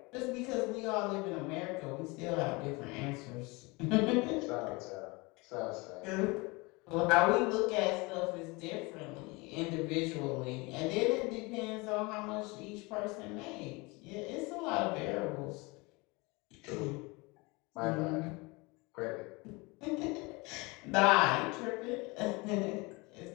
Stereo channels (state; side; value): quieter; right; 25.8 dB